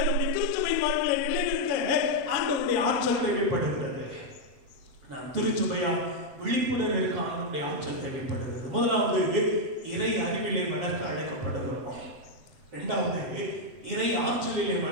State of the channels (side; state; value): left; late; 7.8 ms